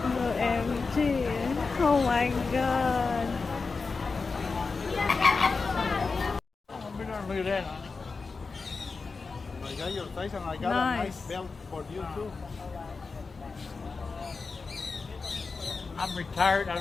OMG. Oh my god. Look at that. I got your size and I got a nice belt for you too. I'm retired. I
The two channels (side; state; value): right; quieter; 4.4 dB